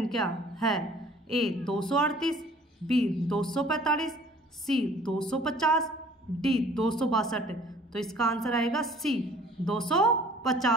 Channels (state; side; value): normal; both; correlation 0.52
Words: है? ए 238, बी 245, सी 250, डी 262। तो इसका आंसर आएगा सी